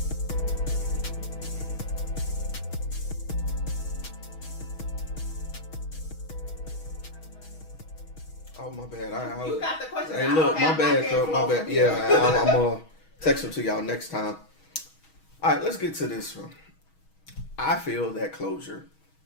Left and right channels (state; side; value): late; right; 6.3 ms